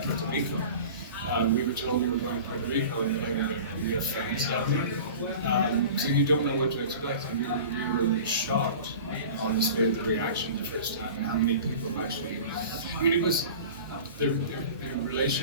Rico. We were told we were going to Puerto Rico and we have friends down there. So you don't know what to expect. And we were shocked, honestly, at the reaction the first time and how many people actually. I mean, it was the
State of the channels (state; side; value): inverted; both; correlation -0.38